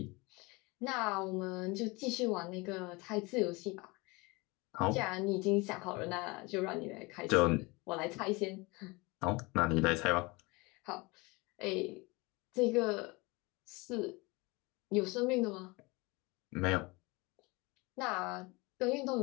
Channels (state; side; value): quieter; right; 25.2 dB